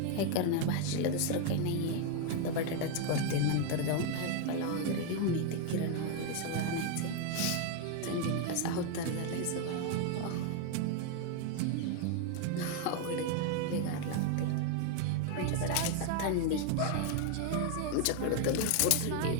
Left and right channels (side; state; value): both; different; correlation 0.01